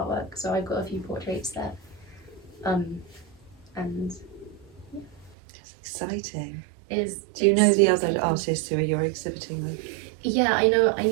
So I've got a few portraits there, and yeah. That's exciting. Do you know the other artists who you're exhibiting with? Yeah, I know.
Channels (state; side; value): drops out; left; at 5.4 s